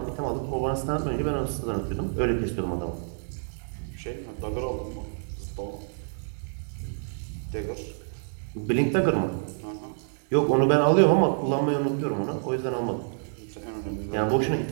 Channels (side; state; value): left; silent; digital silence